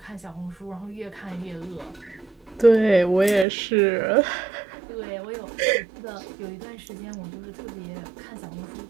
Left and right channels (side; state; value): left; drops out; at 3.5 s